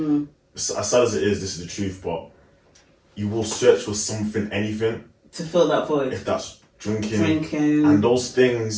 As sad as it is, this is the truth, but you will search for something, anything to fill that void. If that's drinking, and those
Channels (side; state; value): both; identical; correlation 1.00